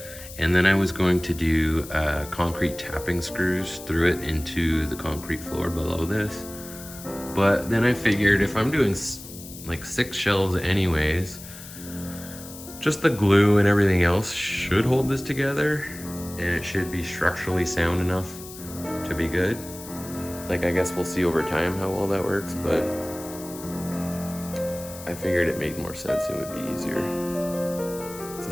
And then I was going to do concrete tapping screws through it into the concrete floor below this. But then I figured if I'm doing like 6 shelves anyways, just the glue and everything else should hold this together, and it should be structurally sound enough to be good. Like, I guess we'll see over time how well that works, but I figured it made more sense and would be easier. This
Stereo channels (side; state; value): left; noise; hiss, 15 dB below the sound